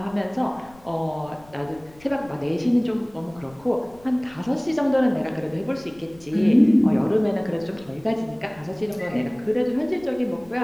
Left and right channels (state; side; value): noise; left; rumble, 25 dB below the sound